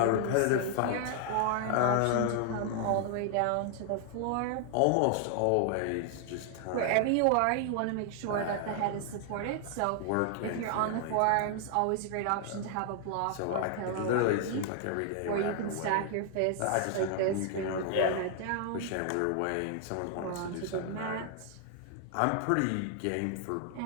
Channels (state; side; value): different; both; correlation 0.00